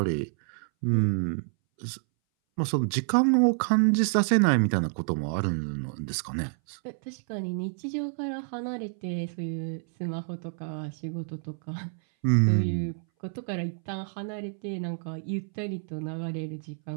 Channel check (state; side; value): silent; left; 59 dB below the other